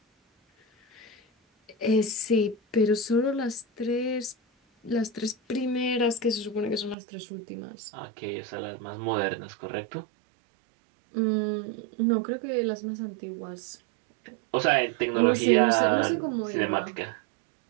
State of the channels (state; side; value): drops out; left; at 7.0 s